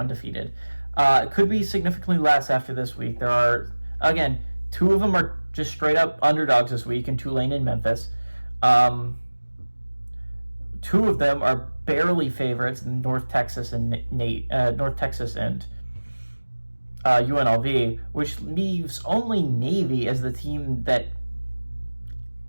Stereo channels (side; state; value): both; inverted; correlation -1.00